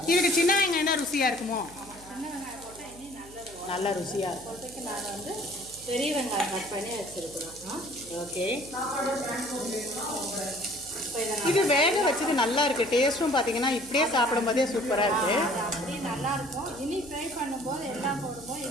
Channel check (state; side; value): noise; right; hum, 20 dB below the sound